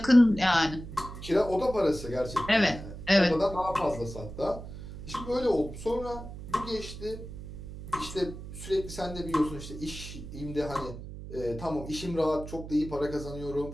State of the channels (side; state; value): right; noise; hum, 11 dB below the sound